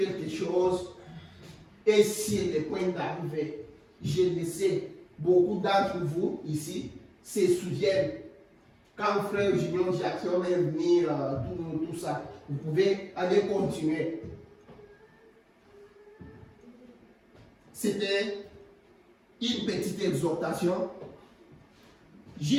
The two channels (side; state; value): both; identical; correlation 1.00